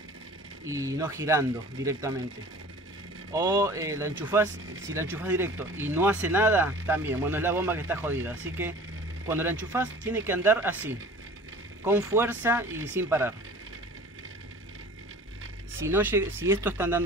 y no girando directamente. O la enchufás, si la enchufás directo y no hace nada, también, bueno, es la bomba que está jodida. Así que cuando la enchufás tiene que andar así, con fuerza y sin parar. Si esto está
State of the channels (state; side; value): normal; both; correlation 0.44